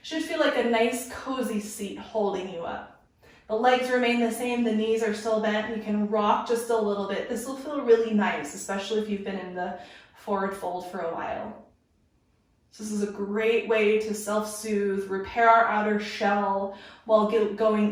should feel like a nice cozy seat holding you up. The legs remain the same, the knees are still bent. You can rock just a little bit. This will feel really nice, especially if you've been in the forward fold for a while. So this is a great way to self-soothe, repair our outer shell while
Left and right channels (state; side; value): identical; both; correlation 1.00